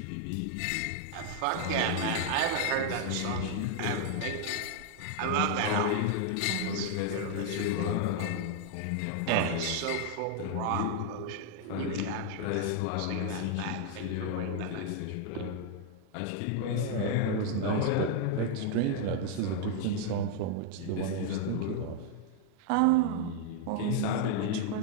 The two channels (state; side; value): different; both; correlation 0.00